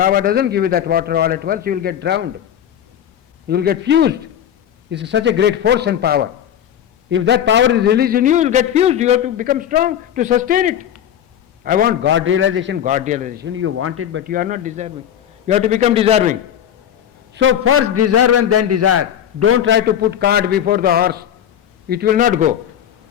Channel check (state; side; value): quieter; right; 9.9 dB